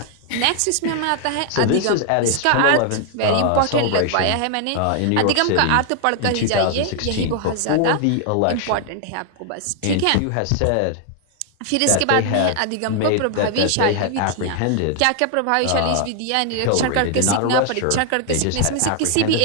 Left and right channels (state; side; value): different; both; correlation 0.00